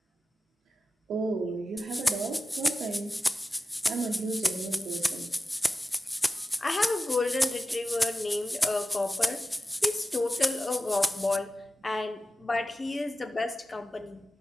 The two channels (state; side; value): normal; both; correlation 0.94